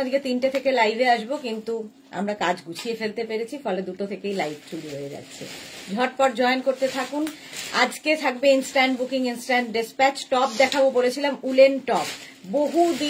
আজকে 3টে থেকে লাইভে আসবো, কিন্তু আমরা কাজ গুছিয়ে ফেলতে পেরেছি, ফলে 2টো থেকেই লাইভ শুরু হয়ে যাচ্ছে। ঝটপট জয়েন করতে থাকুন। আজকে থাকবে instant booking, instant dispatch. Top দেখাবো বলেছিলাম, উলেন টপ। বহু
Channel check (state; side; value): identical; both; correlation 1.00